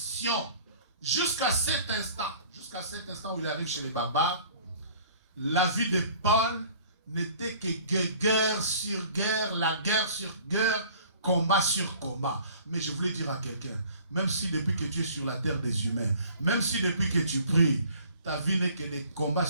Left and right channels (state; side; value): inverted; both; correlation -0.51